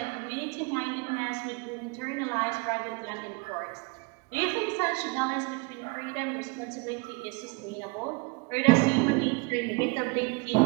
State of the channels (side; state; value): left; quieter; 28.0 dB